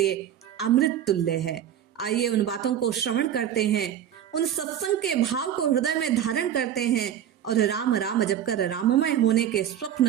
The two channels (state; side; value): quieter; left; 10.2 dB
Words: अमृत तुल्य है। आइए उन बातों को श्रवण करते हैं, उन सत्संग के भाव को हृदय में धारण करते हैं और राम राम जप कर राममय होने के